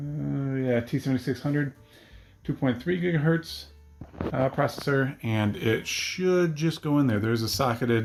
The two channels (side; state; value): both; identical; correlation 1.00